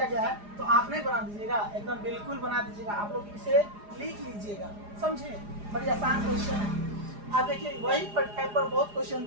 गया है, तो आप नहीं बना दीजिएगा, एकदम बिल्कुल बना दीजिएगा, आप लोग इसे लिख लीजिएगा, समझे, बड़ी आसान क्वेश्चन है। आप देखिए वही टाइप पर बहुत क्वेश्चन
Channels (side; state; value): left; late; 4.9 ms